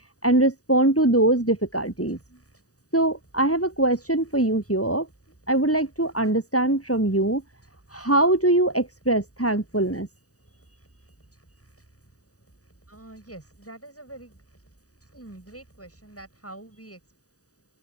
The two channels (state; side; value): late; right; 0.66 ms